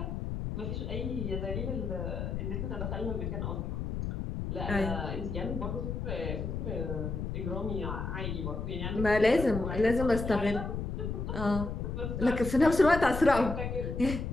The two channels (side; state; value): left; noise; rumble, 4 dB below the sound